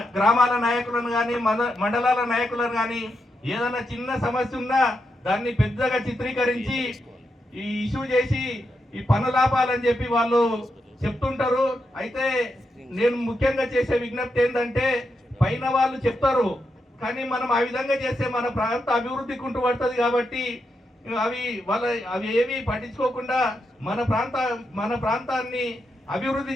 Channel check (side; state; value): both; normal; correlation 0.84